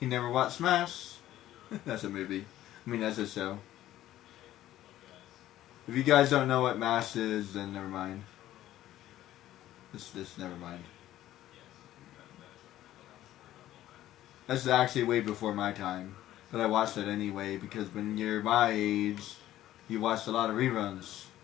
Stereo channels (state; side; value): quieter; right; 13.7 dB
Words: never watched Smash. That's a movie. I mean, that's a show. If you guys don't know what MASH is, then never mind. This never mind. That's actually way before my time. But I watched it anyway because when you're my age, you watch a lot of reruns.